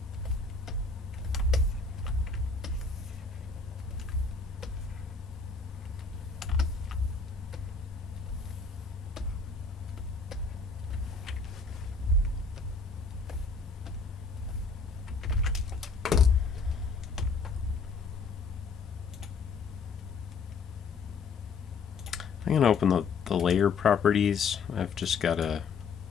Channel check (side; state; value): right; quieter; 4.8 dB